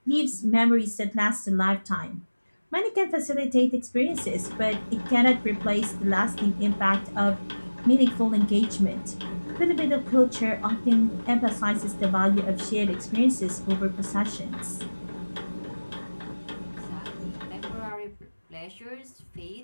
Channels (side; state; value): both; inverted; correlation -1.00